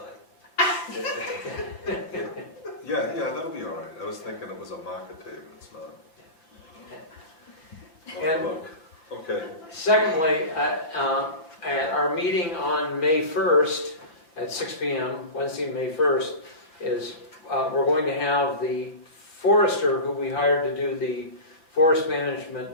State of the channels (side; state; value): right; late; 5.9 ms